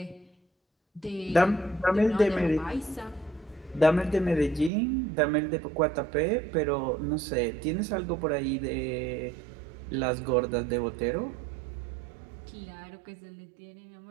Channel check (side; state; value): left; drops out; at 4.7 s